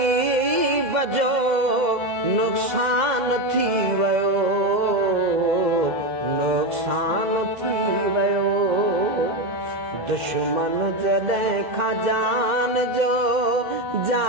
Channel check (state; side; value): late; left; 2.0 ms